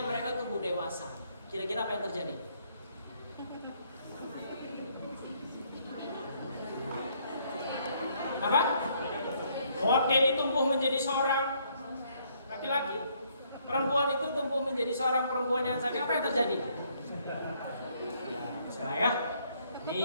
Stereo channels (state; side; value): inverted; both; correlation -0.68